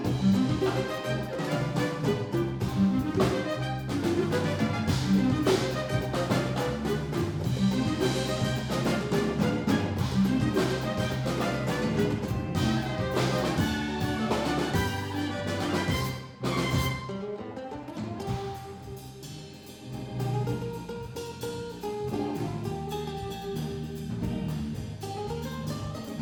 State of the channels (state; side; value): identical; both; correlation 1.00